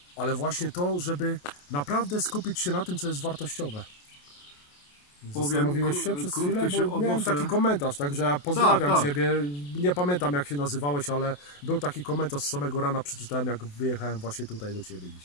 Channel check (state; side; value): late; right; 28 ms